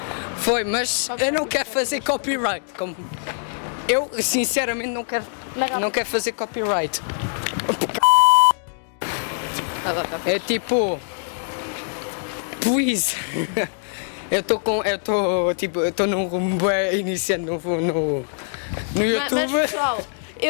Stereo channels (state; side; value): silent; right; digital silence